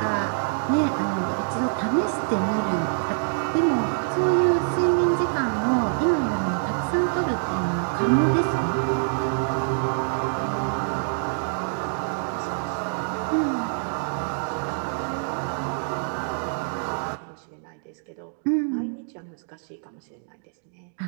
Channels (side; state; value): left; silent; digital silence